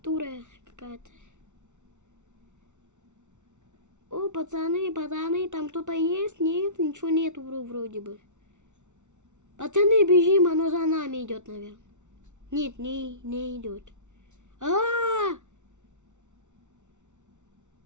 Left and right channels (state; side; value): late; left; 0.84 ms